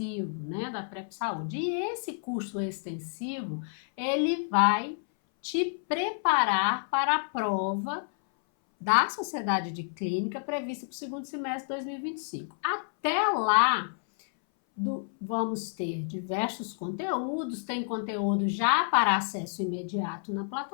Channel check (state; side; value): silent; right; 58 dB below the other